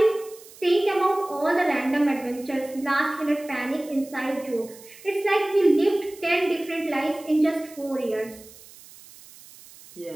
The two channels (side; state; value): right; noise; hiss, 21 dB below the sound